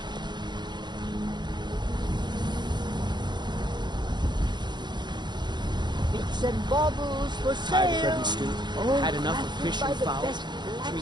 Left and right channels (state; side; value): late; left; 0.21 ms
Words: Bits and baubles for Tired of sale. bread and stew? All Had enough of crafted fish by and the fowl? best Treat